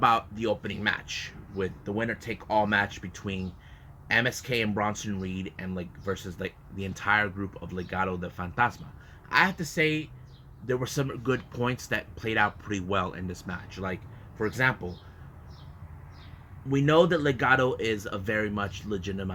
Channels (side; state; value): both; identical; correlation 1.00